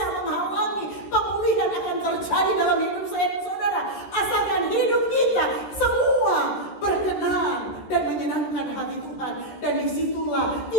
menghalangi pemulihan akan terjadi dalam hidup saya dan saudara. Asalkan hidup kita semua berkenan dan menyenangkan hati Tuhan. Dan disitulah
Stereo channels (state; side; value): late; right; 13 ms